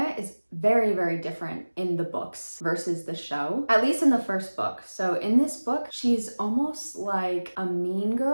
is very, very different in the books versus the show, at least in the first book. So in this book, she's almost like a mean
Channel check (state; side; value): inverted; both; correlation -1.00